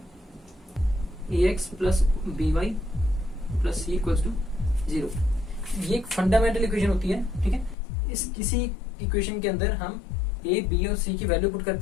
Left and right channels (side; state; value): right; drops out; at 7.8 s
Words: ax plus B Y plus C equals to 0, ये एक फंडामेंटल इक्वेशन होती है, ठीक है। इस किसी इक्वेशन के अंदर हम ए बी और सी की वैल्यू पुट